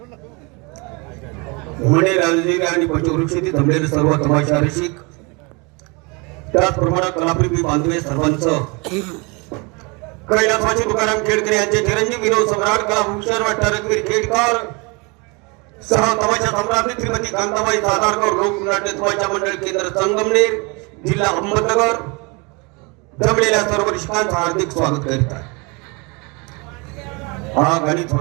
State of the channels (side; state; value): left; quieter; 29.3 dB